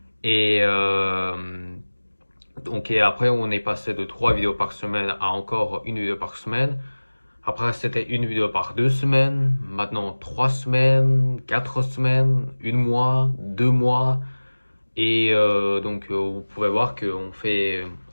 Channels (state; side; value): inverted; both; correlation -1.00